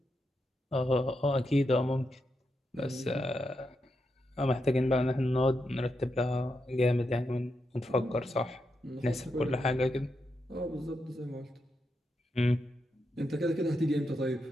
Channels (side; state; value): both; normal; correlation 0.85